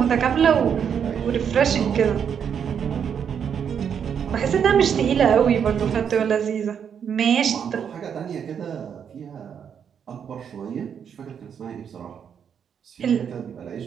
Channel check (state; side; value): quieter; left; 7.8 dB